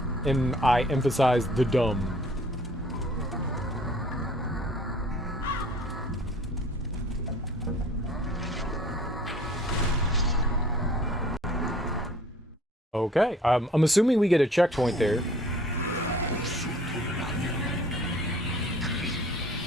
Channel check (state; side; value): normal; both; correlation 0.52